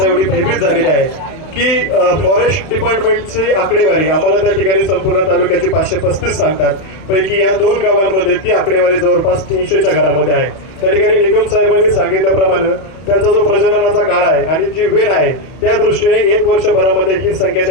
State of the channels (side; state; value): right; late; 31 ms